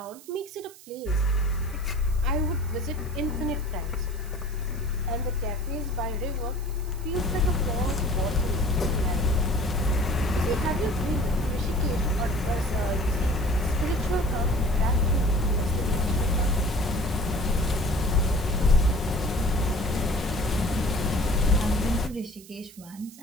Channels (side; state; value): right; noise; hiss, 21 dB below the sound